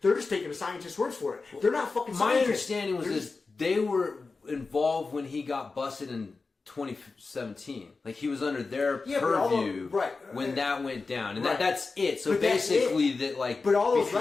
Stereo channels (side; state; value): right; quieter; 4.1 dB